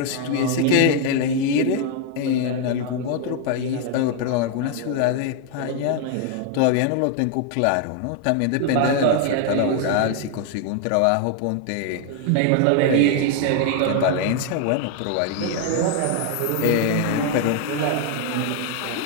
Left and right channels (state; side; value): different; both; correlation 0.00